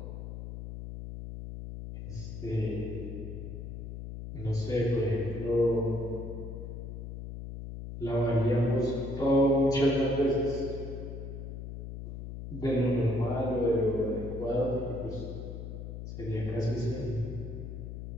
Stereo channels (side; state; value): left; noise; hum, 8 dB below the sound